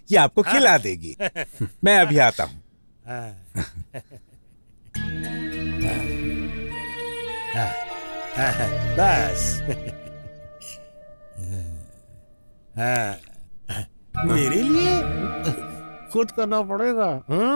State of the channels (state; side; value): inverted; both; correlation -1.00